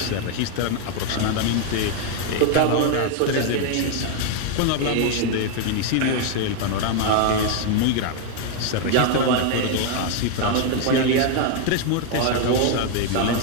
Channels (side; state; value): both; different; correlation 0.00